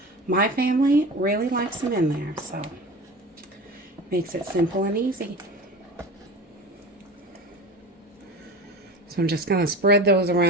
my family really likes them in there, so it makes it simple and easy. So I'm just going to spread those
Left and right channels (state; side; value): normal; both; correlation 0.33